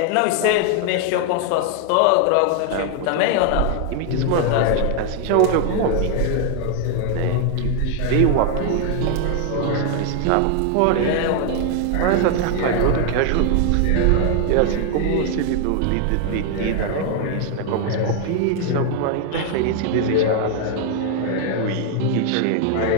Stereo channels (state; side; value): different; both; correlation 0.00